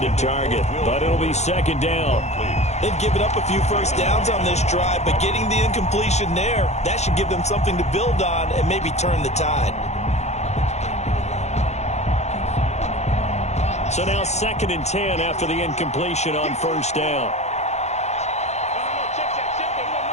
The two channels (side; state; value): right; late; 0.32 ms